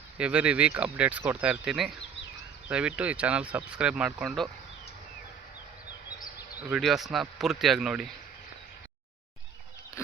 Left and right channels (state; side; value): quieter; left; 7.0 dB